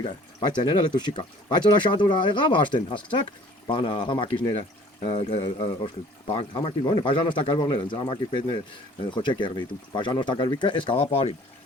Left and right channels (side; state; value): both; normal; correlation 0.52